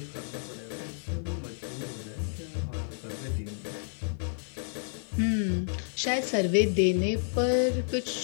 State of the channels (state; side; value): silent; right; 57 dB below the other